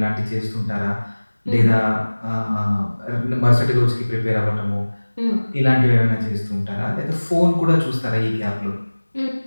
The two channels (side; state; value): both; inverted; correlation -1.00